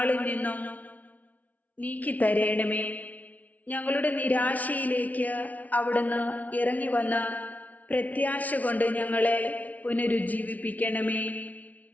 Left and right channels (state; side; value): late; right; 0.072 ms